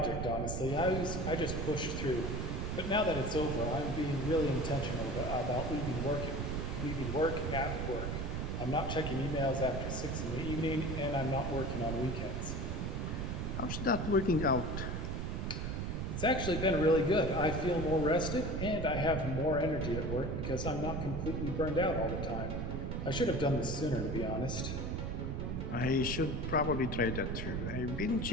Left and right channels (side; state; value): right; noise; rumble, 2 dB below the sound